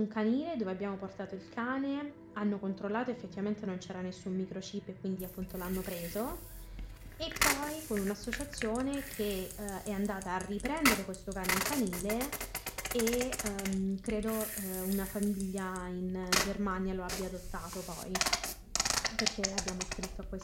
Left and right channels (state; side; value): identical; both; correlation 1.00